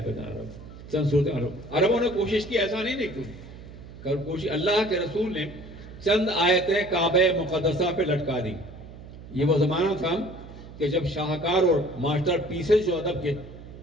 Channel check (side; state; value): right; noise; hum, 16 dB below the sound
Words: بتا رہا ہوں, چند صورتیں. عربوں نے کوشش کی, ایسا نہیں دیکھو کوشش, اللہ کے رسول نے چند آیتیں کعبہ مقدسہ پہ لٹکا دی. یہ وہ زمانہ تھا کہ جب شاہکار اور ماسٹر پیسز جو ادب کے